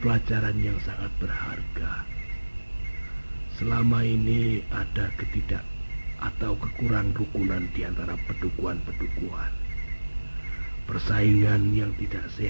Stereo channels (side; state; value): both; inverted; correlation -1.00